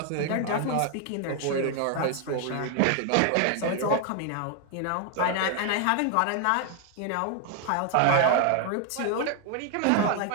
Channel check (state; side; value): different; both; correlation 0.00